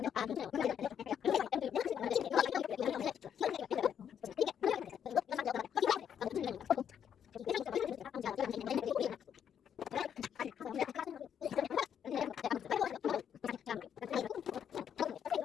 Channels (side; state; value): right; quieter; 8.7 dB